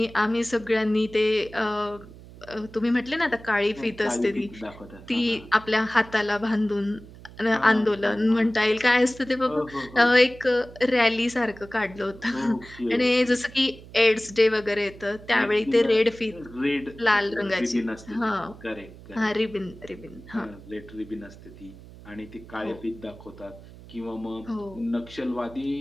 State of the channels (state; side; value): noise; right; hum, 19 dB below the sound